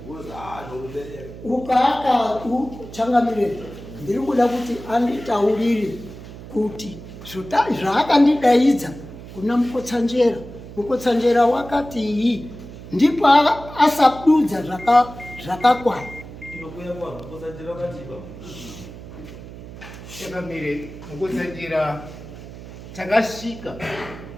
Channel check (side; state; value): right; noise; hum, 14 dB below the sound